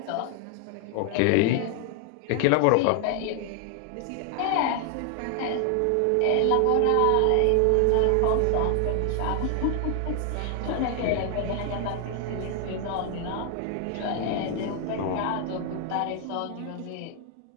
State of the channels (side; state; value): both; different; correlation 0.00